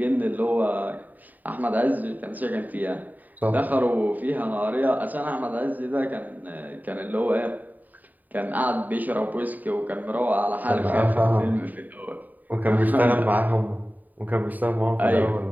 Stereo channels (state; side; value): late; left; 0.084 ms